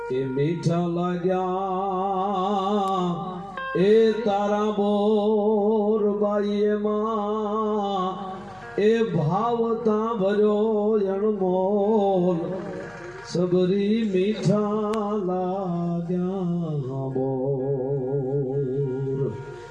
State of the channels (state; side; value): noise; left; hum, 28 dB below the sound